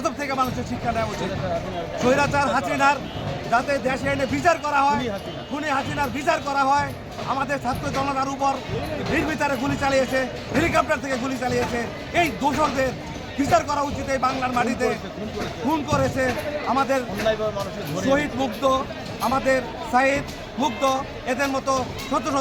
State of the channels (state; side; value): identical; both; correlation 1.00